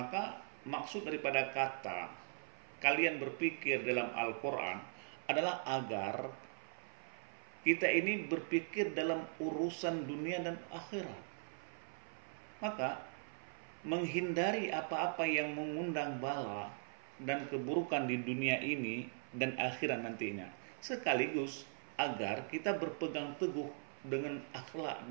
maksud daripada kata kalian berpikir dalam Al-Quran adalah agar kita ini berpikir dalam urusan dunia dan akhirat. Maka menghindari apa-apa yang mengundang bala dan keburukan di dunia ini dan akhirat nantinya, sekaligus agar kita berpegang teguh dengan akhlak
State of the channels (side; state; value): left; silent; 51 dB below the other